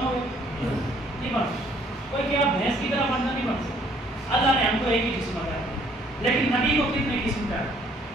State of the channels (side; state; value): both; normal; correlation 0.62